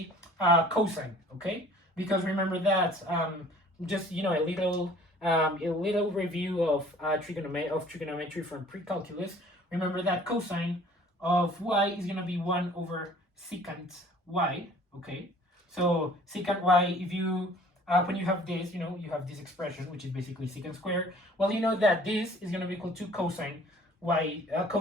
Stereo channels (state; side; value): normal; both; correlation 0.52